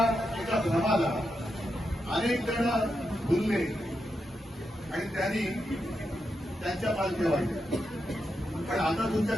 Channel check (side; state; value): both; normal; correlation 0.85